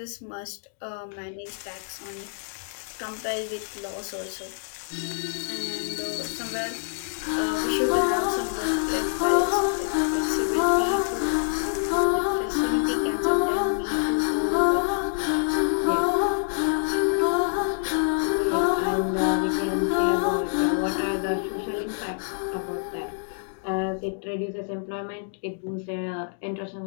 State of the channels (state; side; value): silent; right; digital silence